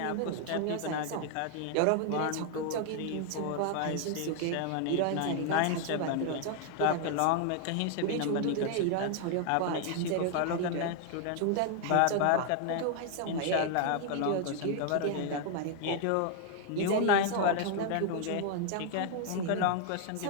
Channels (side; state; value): both; different; correlation 0.00